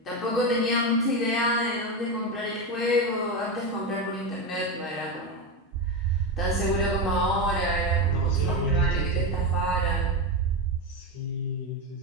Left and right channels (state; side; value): normal; both; correlation 0.14